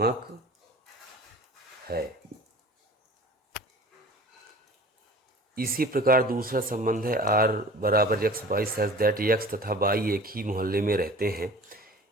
है। इसी प्रकार दूसरा संबंध है r बराबर x, y such that x तथा y एक ही मोहल्ले में रहते हैं।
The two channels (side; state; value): both; normal; correlation 0.43